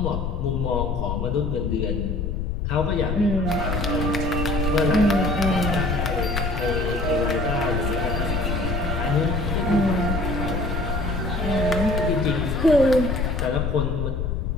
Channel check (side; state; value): left; noise; rumble, 2 dB below the sound